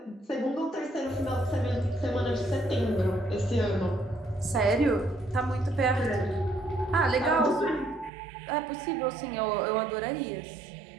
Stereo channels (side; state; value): left; drops out; at 8.1 s